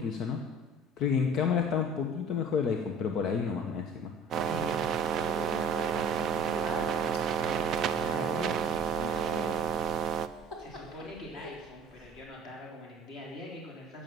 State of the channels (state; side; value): normal; both; correlation 0.44